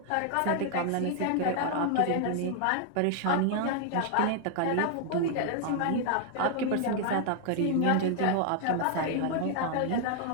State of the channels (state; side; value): different; both; correlation 0.00